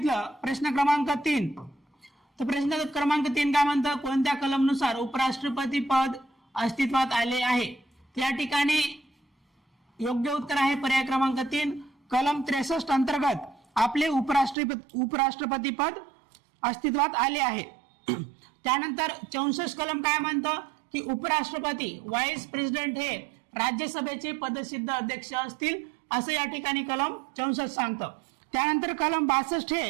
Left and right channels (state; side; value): drops out; left; at 14.6 s